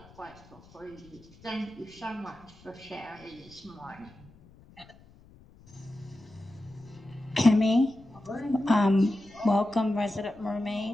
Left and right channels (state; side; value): noise; left; rumble, 24 dB below the sound